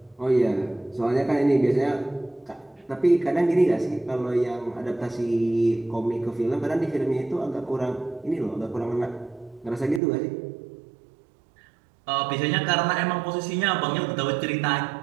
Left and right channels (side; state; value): left; drops out; at 10.0 s